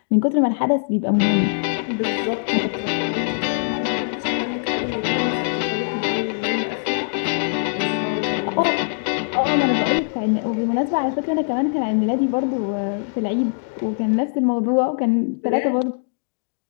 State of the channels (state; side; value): silent; right; digital silence